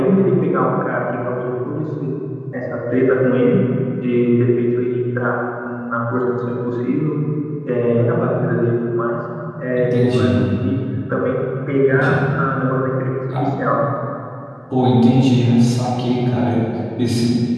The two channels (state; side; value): identical; both; correlation 1.00